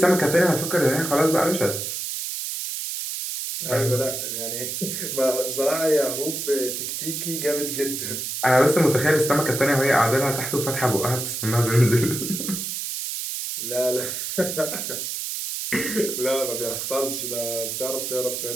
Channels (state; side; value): noise; right; hiss, 4 dB below the sound